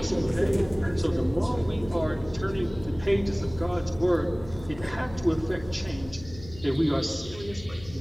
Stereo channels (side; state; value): left; noise; hum, 16 dB below the sound